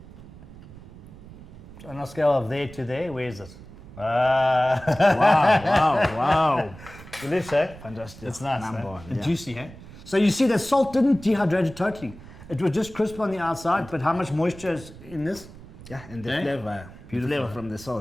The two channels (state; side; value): noise; right; rumble, 18 dB below the sound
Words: So on a scale of there to there, where is it? Wow, wow, wow. Delicious, eh? Fantastic. It's nice, Number eh? one, And yeah. juicy, eh? So you see the salt didn't dehydrate it totally. It was just crisp on the outside, but how much moisture is in this? Yeah, and the Eh? flavor. Beautiful, Flavor eh? from the